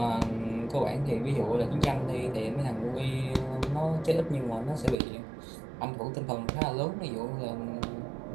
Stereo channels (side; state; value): left; drops out; at 5.0 s